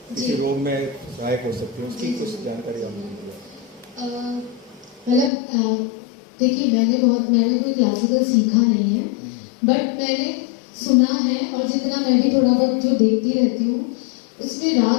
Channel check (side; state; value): right; drops out; at 5.3 s